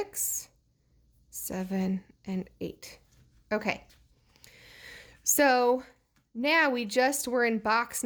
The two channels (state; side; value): identical; both; correlation 1.00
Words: 7, and 8. Okay. So now we just were in box